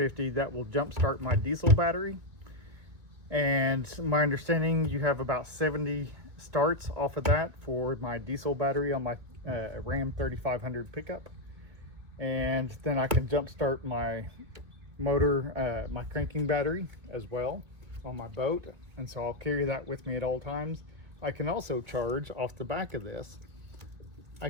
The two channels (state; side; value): late; left; 2.4 ms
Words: that will jump start my diesel battery. And my understanding, you have about 70 starts off of that for my diesel battery on my Ram 3500 pickup. And then I can jump start my motor, my cranking battery as well on my boat, and so I'll carry that with me at all times. I can also charge off the back of this. I